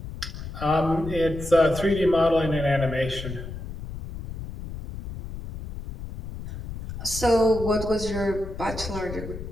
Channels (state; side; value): noise; left; rumble, 9 dB below the sound